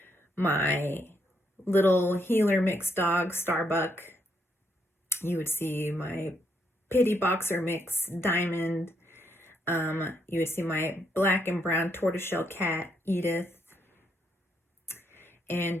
my little healer mix dog Starbuck, you would see my pity boxer mix Diamond, you would see my black and brown tortoiseshell cat Edith,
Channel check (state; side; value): normal; both; correlation 0.76